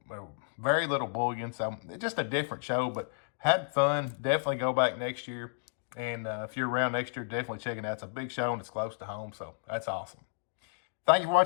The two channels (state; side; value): silent; right; digital silence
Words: very little bullion. So it's just a different show, but had fun. Definitely go back next year. And if you're around next year, definitely check it out. It's a big show and it's close to home, so that's awesome. Thank you for